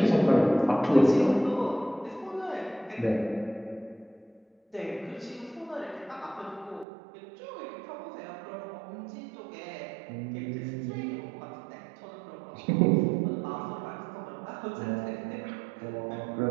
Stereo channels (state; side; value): drops out; left; at 6.9 s